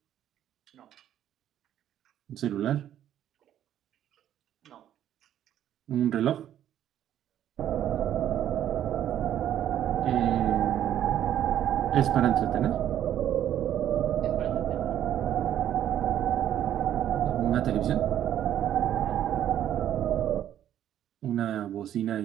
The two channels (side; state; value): left; quieter; 11.1 dB